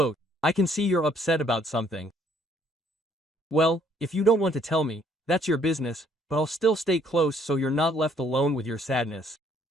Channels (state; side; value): normal; both; correlation 0.63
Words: "I can see you're upset about something. Well, if you don't want to tell me, that's your business, but I'll still stay close so you're not left alone with your sadness."